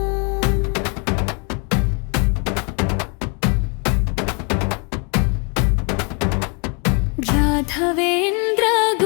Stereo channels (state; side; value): quieter; right; 35.5 dB